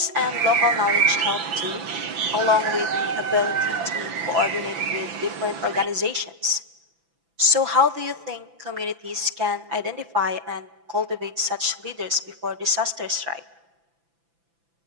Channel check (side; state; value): left; late; 6.0 ms